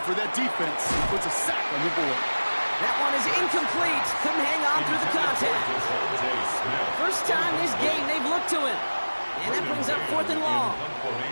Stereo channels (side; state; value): both; inverted; correlation -1.00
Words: For that defense, he puts a sack on the board. That one is incomplete. Couldn't hang on through the contact. First time this game they've looked to him. And that brings up 4th and long.